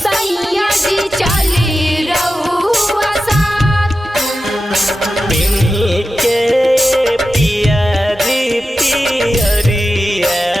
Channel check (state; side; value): normal; both; correlation 0.92